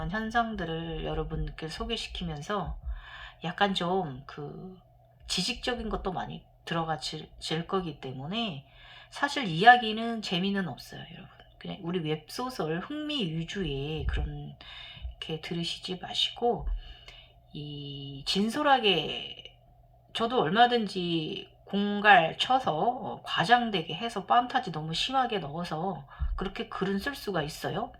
현상들을 여러분께 소개시키면서 약간 좀 지식적인 것도 많이 들어가질 거기 때문에 사실 이야기는 재미는 없어요, 여러분. 그냥 우리 웹소설 흥미 위주의 그런 게 들으시지 마시고, 이 진솔하게, 저도 얼마든지 공갈 쳐서 과장되게 해서 판타지 너무 심하게 넣어서 그렇게 글은 쓸 수가 있어요.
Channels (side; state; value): both; identical; correlation 1.00